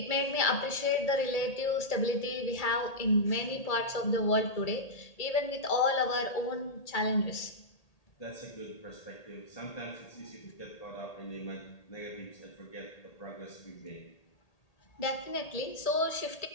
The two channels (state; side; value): late; right; 1.8 ms